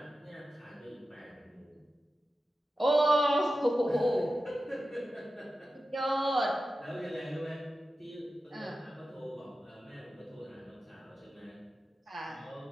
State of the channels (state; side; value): normal; both; correlation 0.93